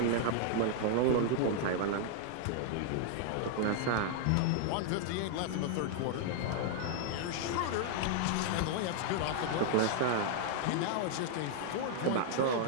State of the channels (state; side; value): different; both; correlation 0.00